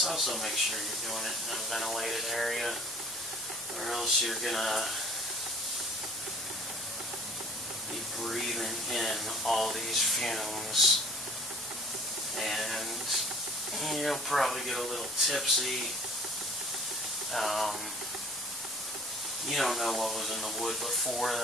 also make sure you're doing it in a ventilated area, or else you're going to be breathing in all these fumes, and you'll probably get a little tipsy. You don't know what was in the wood before.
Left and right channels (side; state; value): both; normal; correlation 0.49